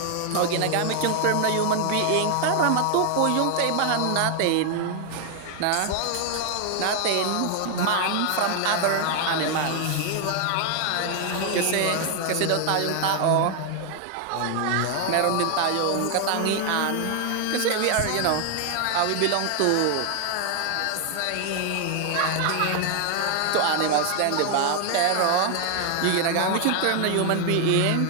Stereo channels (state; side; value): different; both; correlation 0.00